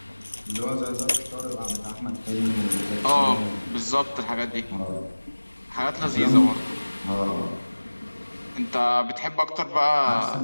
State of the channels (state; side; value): inverted; both; correlation -1.00